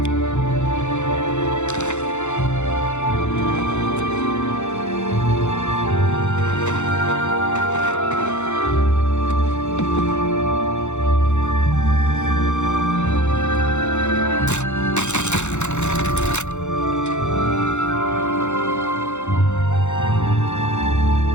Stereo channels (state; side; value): late; right; 0.83 ms